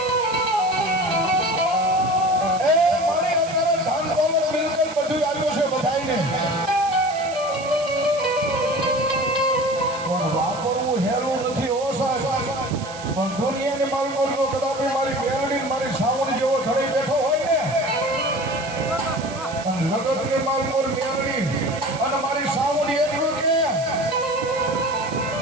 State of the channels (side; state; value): right; noise; hiss, 15 dB below the sound